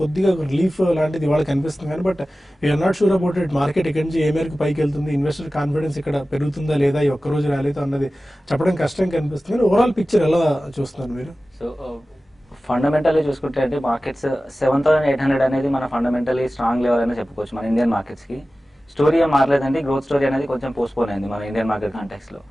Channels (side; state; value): both; normal; correlation 0.96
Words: కొద్దిగా రిలీఫ్ లాంటిది ఇవాళ కనిపిస్తుంది కానీ but we're not sure about it. Market ఇక్కడి నుంచి ఏ మేరకు పైకి వెళ్తుంది, ఇన్వెస్టర్ కాన్ఫిడెన్స్ ఇక్కడ పెరుగుతుందా లేదా, ఈ ఒక్కరోజు ర్యాలీతో అన్నది చెప్పడం కష్టం కనిపిస్తుంది. ఓవరాల్ పిక్చర్ ఎలా చూస్తున్నారు మీరు? సో ఫండమెంటల్లీ చూసుకుంటే అంటే మార్కెట్స్ 7800 అనేది మన ఫండమెంటలీ స్ట్రాంగ్ లెవెల్ అని చెప్పుకోవచ్చు మన ఇండియన్ మార్కెట్స్కి. స్టోరీ ఏం మారలేదండి, గ్రోత్ స్టోరీ అనేది కొంచెం పోస్ట్పోన్ అయింది మన ఇండియన్ మార్కెట్ కాంటెక్స్లో.